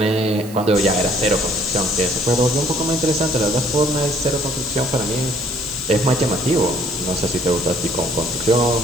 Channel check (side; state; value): right; noise; hiss, 17 dB below the sound